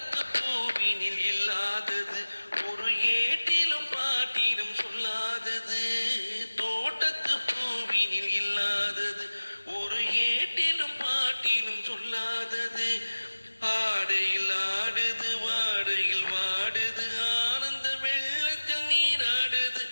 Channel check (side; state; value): both; inverted; correlation -1.00